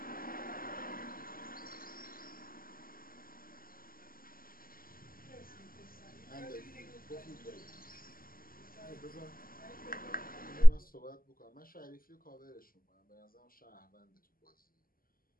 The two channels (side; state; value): right; late; 0.42 ms